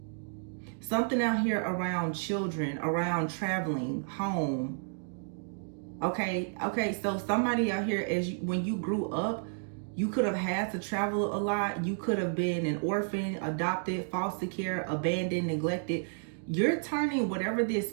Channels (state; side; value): silent; left; digital silence